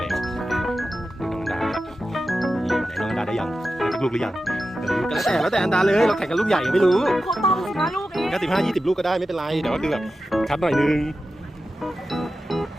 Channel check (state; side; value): normal; both; correlation 0.92